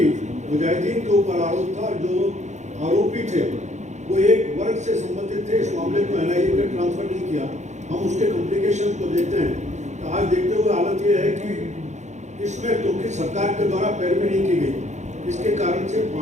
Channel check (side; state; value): left; late; 0.34 ms